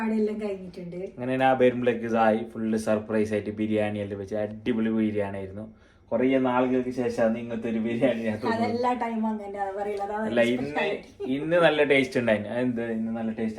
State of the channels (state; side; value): identical; both; correlation 1.00